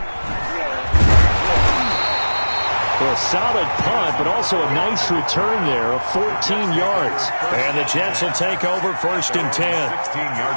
Well, a solid punt, but also a nice return there of 14 yards. And the Jets will take over 1st and 10.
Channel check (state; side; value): inverted; both; correlation -1.00